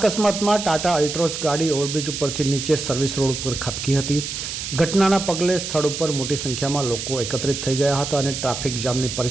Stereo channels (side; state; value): right; noise; hiss, 6 dB below the sound